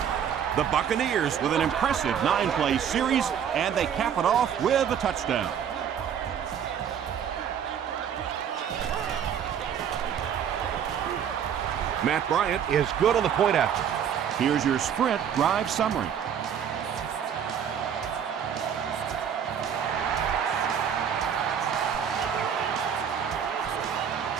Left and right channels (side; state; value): left; quieter; 8.3 dB